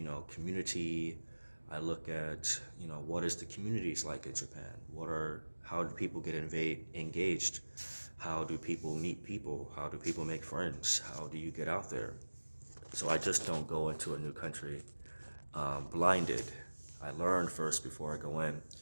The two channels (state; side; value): inverted; both; correlation -1.00